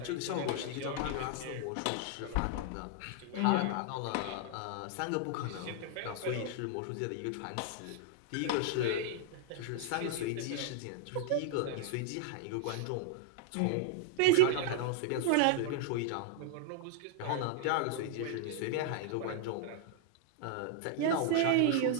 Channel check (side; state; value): both; different; correlation -0.01